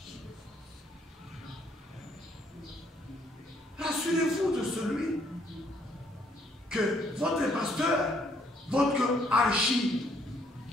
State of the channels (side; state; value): both; normal; correlation 0.67